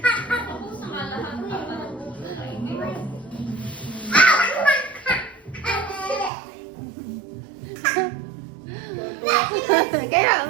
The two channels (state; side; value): drops out; left; at 6.3 s